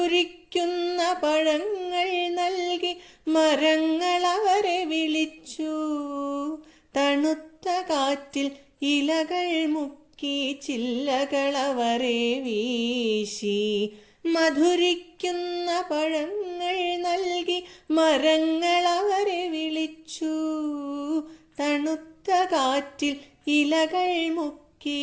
പഴങ്ങൾ നൽകി മരങ്ങൾ അവരെ വിളിച്ചു. തണുത്ത കാറ്റിൽ ഇലകൾ മുക്കി ചില്ലകൾ അവരെ വീശി. മധുരിക്കുന്ന പഴങ്ങൾ നൽകി മരങ്ങൾ അവരെ വിളിച്ചു. തണുത്ത കാറ്റിൽ ഇലകൾ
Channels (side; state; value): both; identical; correlation 1.00